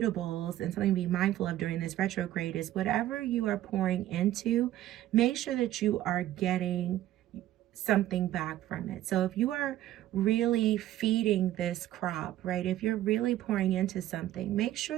and something to be mindful of during this retrograde is whatever you are pouring into, make sure that you are getting something back from it. So if you are really feeding this crop, right? If you're really pouring into something, make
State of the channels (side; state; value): left; quieter; 13.6 dB